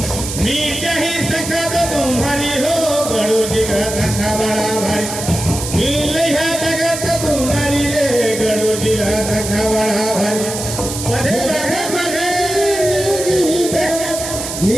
मीट ही सखा तो तुम्हारी हो गरुड़ गिरा सखा बड़ा भारी नीली है जगत तुम्हारी रे गरुड़ गिरा सखा बड़ा भारी पधे बधे बधे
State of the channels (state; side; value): noise; right; hiss, 6 dB below the sound